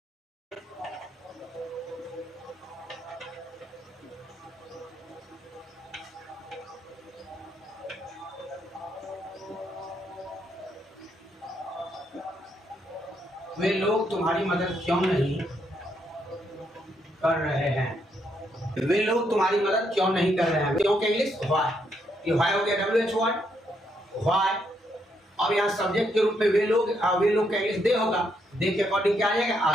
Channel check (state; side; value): normal; both; correlation 0.76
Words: वे लोग तुम्हारी मदद क्यों नहीं कर रहे हैं? वे लोग तुम्हारी मदद क्यों नहीं कर रहे हैं? क्यों के इंग्लिश? व्हाई। व्हाई हो गया WH वर्ड। व्हाई। अब यहाँ सब्जेक्ट के रूप में वे लोग का इंग्लिश दे होगा। दे के अकॉर्डिंग क्या आ जाएगा?